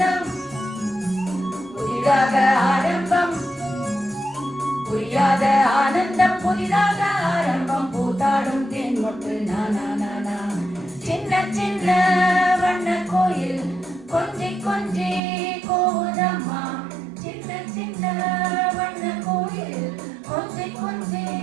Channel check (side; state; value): left; drops out; at 15.2 s